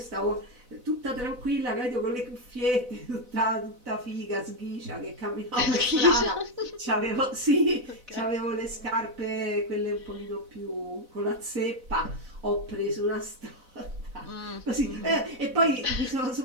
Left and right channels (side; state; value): left; late; 4.0 ms